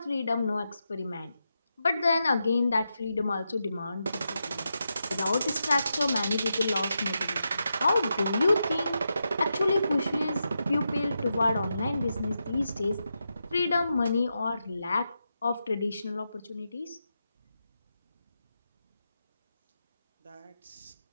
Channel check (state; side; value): inverted; both; correlation -0.87